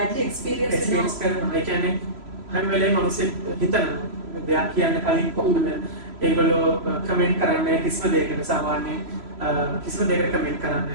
එක්ස්පීරියන්ස් කරනවා. ඒ කියන්නේ හැම වෙලේම මිනිස්සු හිතනවා දෙයක් කියන්න කලින් කොහොමද ඒගොල්ලෝ කමෙන්ට් කරන්නේ කිසිම දෙයකට සාමාන්‍යයෙන් කිසිම දෙයකට කමෙන්ට්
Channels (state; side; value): late; left; 3.0 ms